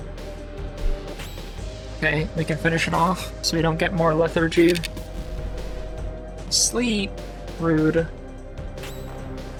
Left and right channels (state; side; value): identical; both; correlation 1.00